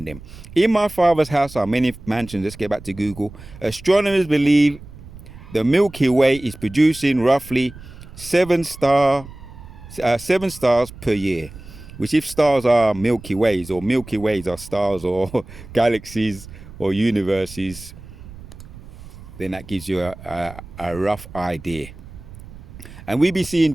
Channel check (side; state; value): right; noise; rumble, 17 dB below the sound